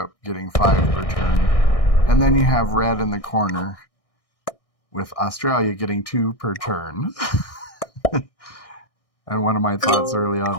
getting 5 per turn. And then you have red in the corner with Australia getting 2 per turn. And one of my thoughts early on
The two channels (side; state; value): right; late; 1.6 ms